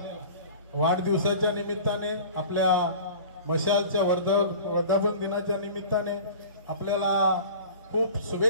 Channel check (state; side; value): inverted; both; correlation -0.40